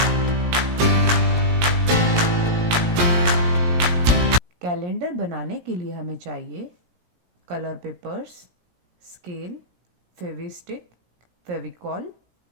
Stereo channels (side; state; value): left; late; 17 ms